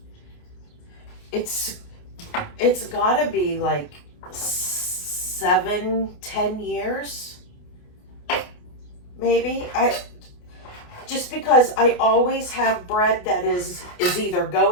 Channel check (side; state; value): right; late; 28 ms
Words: it's got to be like 7-10 years, maybe. Just because I always have bread that is either